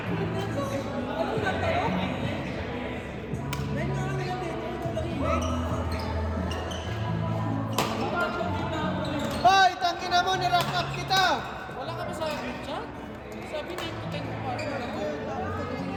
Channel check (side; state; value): both; identical; correlation 1.00